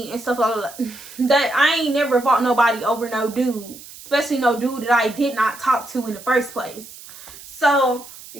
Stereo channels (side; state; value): right; noise; hiss, 17 dB below the sound